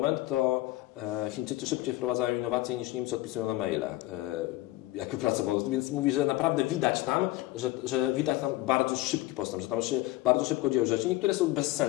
to Chińczycy szybciej wprowadzają innowacje niż Niemcy odpisują na maile, jak pracował. Więc mówi, że naprawdę widać tam, że widać tam bardzo szybki postęp, że tam się bardzo szybko dzieją rzeczy. Niektóre są bez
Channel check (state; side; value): quieter; right; 18.1 dB